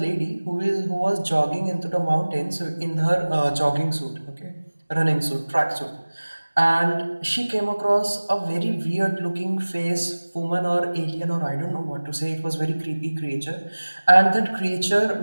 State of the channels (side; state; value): both; inverted; correlation -1.00